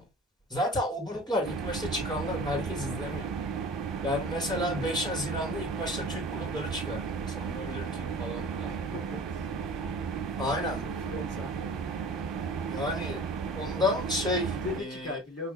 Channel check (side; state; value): both; normal; correlation 0.41